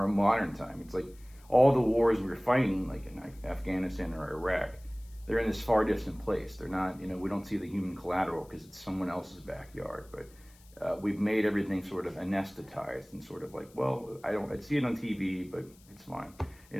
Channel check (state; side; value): noise; left; hiss, 27 dB below the sound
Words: modern time, it's like all the wars we're fighting, like in Afghanistan or Iraq, they're in this far distant place. They're not, you know, we don't see the human collateral because it's someone else's backyard. But we've made everything sort of anesthetized and sort of like, well, I'd see it on TV, but it's fine, you